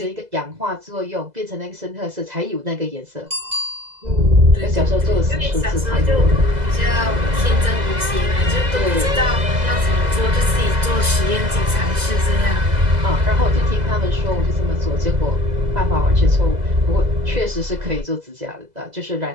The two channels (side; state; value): left; late; 2.0 ms